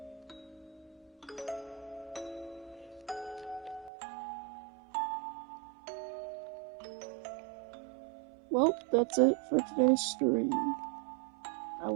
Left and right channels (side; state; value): left; drops out; at 3.9 s